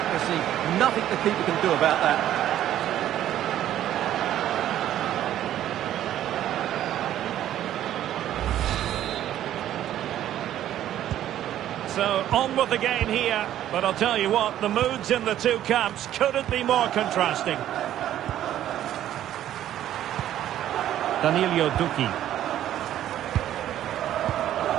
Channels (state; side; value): quieter; left; 12.0 dB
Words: Nothing the keeper can do about that. So, on with the game here. But I'll tell you what, the moods in the two camps couldn't be more contrasting. Danilo Duki.